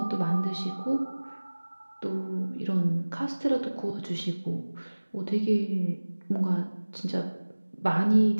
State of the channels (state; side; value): inverted; both; correlation -1.00